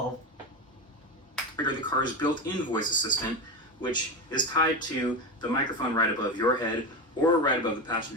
trigger the car's built-in voice assistant, which is tied to the microphone right above your head or right above the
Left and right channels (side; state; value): both; normal; correlation 0.19